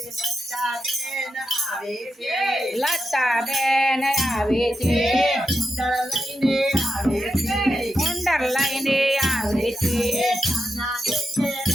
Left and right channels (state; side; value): normal; both; correlation 0.87